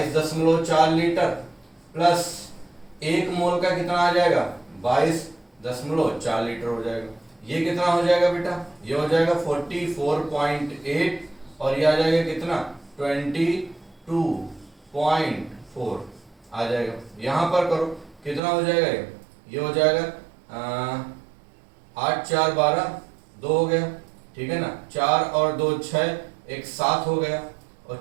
लीटर प्लस 1 मोल का कितना आ जाएगा 22.4 लीटर हो जाएगा। ये कितना हो जाएगा बेटा, ये हो जाएगा 44.8, और ये आ जाएगा कितना 22.4 आ जाएगा। यहां पर करो कितना हो जाएगा, ये हो जाएगा 8 4 12, 2 हो गया, ठीक है ना, 4 और 2 6, 1 7 हो गया, और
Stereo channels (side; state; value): left; drops out; at 18.4 s